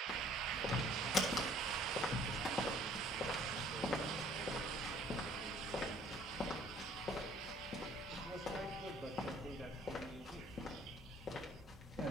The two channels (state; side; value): normal; both; correlation 0.57